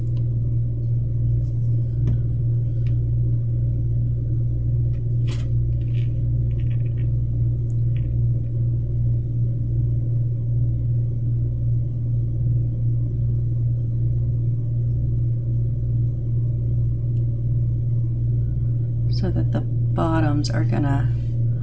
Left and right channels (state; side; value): identical; both; correlation 1.00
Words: So that the bottoms are gonna